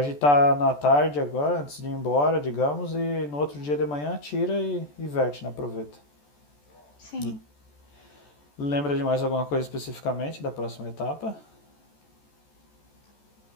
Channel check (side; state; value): right; late; 14 ms